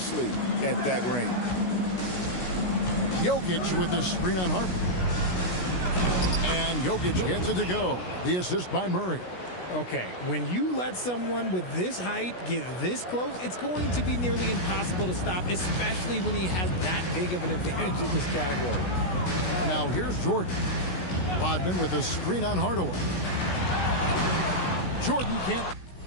at that range. Jokic with the screen on Harper. And Jokic gets it to go. The assist by Murray. Okay, when you let someone with this height get this close, it's going to be nearly impossible to stop, especially when he has that big of an advantage in this category. Now here's Jordan. Rodman with a screen on Hardaway. Jordan can't.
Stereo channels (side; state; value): right; late; 16 ms